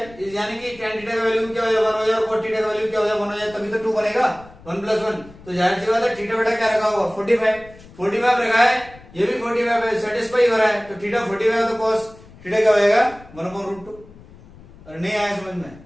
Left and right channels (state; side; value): noise; left; rumble, 22 dB below the sound